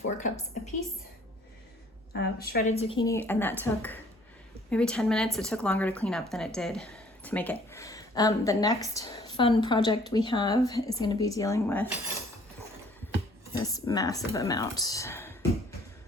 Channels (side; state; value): both; normal; correlation 0.57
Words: cups apiece of shredded zucchini, and that took maybe 10 minutes. It took longer to clean up than it did to make it. The next fun project we have is going to be dealing with this massive amount